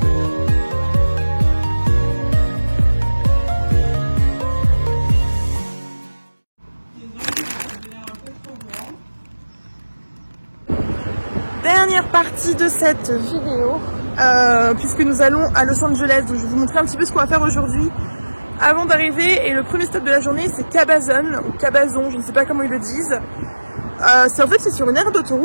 Dernière partie de cette vidéo, puisque nous allons à Los Angeles, donc je vais vous montrer un petit peu ce qu'on va faire aujourd'hui avant d'arriver. Et le premier stop de la journée c'est Cabazon, ou Cabazon, je ne sais pas comment ils le disent. En fait c'est sur une aire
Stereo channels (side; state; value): both; inverted; correlation -1.00